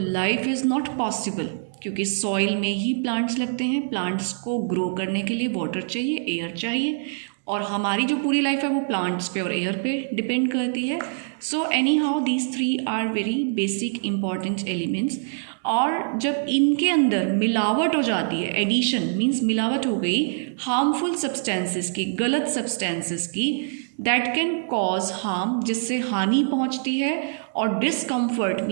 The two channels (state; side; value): silent; left; digital silence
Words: इज़ नॉट पॉसिबल, क्योंकि सॉइल में ही प्लांट्स लगते हैं. प्लांट्स को ग्रो करने के लिए वाटर चाहिए, एयर चाहिए, और हमारी जो पूरी लाइफ है वो प्लांट्स पे और एयर पे डिपेंड करती है. So anyhow these three are very basic important elements. और जब इनके अंदर मिलावट हो जाती है, एडिशन मीन्स मिलावट हो गई हार्मफुल सब्सटेंसेस की, गलत सब्सटेंसेस की, दैट कैन कॉज हार्म, जिससे हानि पहुंचती है. और डिसकम्फर्ट